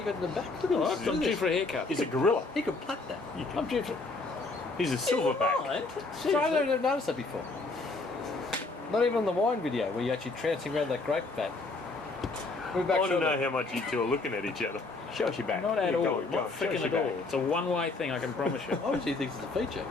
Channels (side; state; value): right; quieter; 3.5 dB